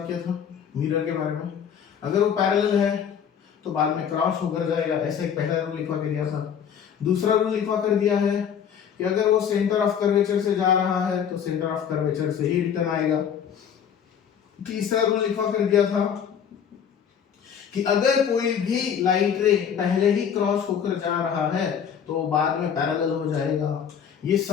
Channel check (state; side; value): quieter; right; 8.0 dB